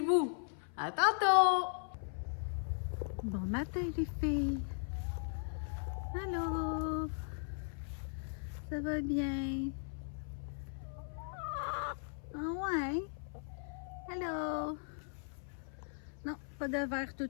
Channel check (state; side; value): silent; right; 52 dB below the other